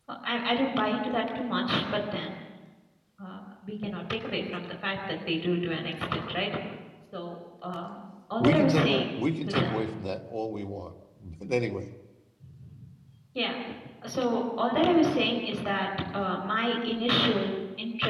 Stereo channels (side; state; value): both; identical; correlation 1.00